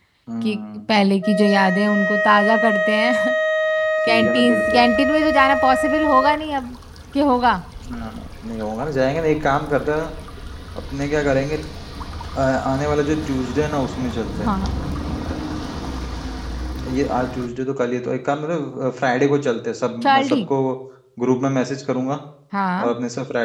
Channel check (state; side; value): identical; both; correlation 1.00